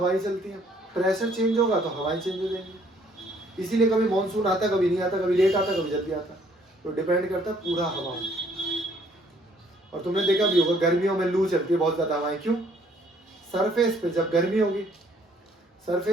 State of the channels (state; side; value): normal; both; correlation 0.63